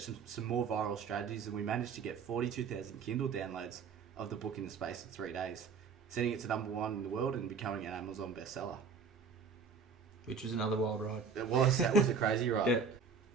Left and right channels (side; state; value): left; quieter; 5.6 dB